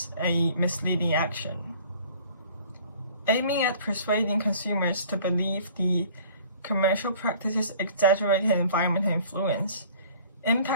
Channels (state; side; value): inverted; both; correlation -0.51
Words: a misleading action. Aiming at persuading consumers to believe the commercial practice's exaggerated environmental influence,